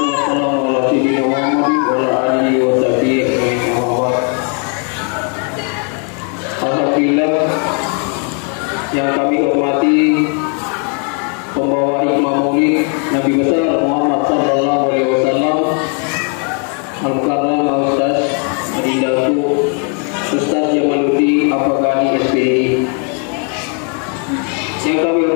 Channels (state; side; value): quieter; right; 39.7 dB